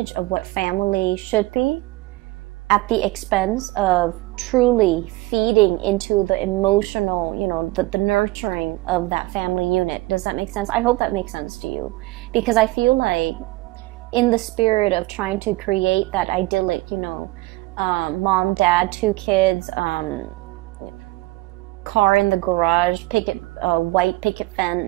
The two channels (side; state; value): left; quieter; 20.5 dB